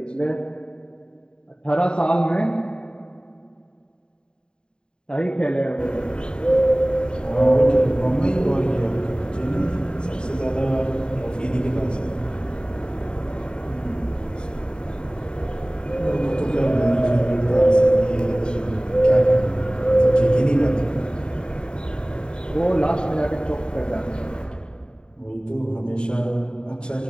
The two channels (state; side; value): late; right; 0.050 ms